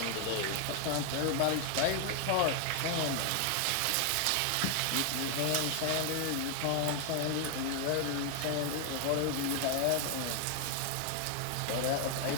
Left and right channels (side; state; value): both; different; correlation 0.00